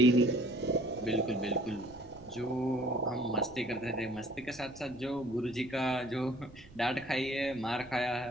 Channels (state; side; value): noise; right; rumble, 22 dB below the sound